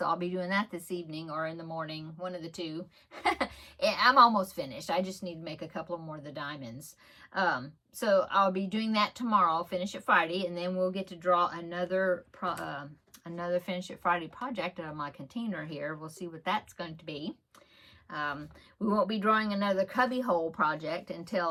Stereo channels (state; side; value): identical; both; correlation 1.00